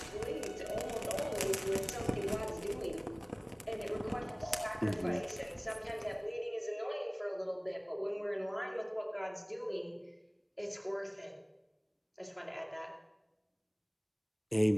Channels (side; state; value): both; identical; correlation 1.00